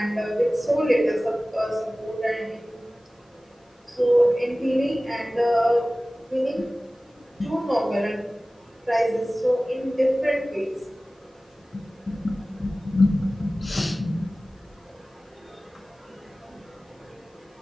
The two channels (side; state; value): both; normal; correlation 0.97